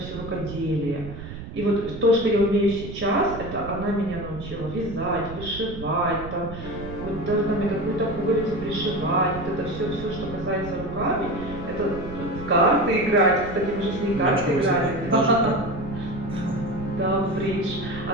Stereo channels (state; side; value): noise; right; rumble, 11 dB below the sound